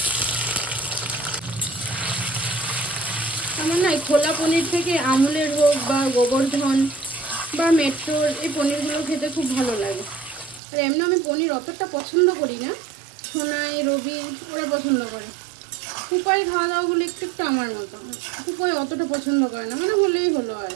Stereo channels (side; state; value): left; drops out; at 10.6 s